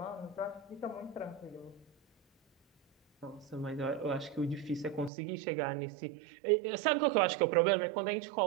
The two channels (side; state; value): left; drops out; at 5.1 s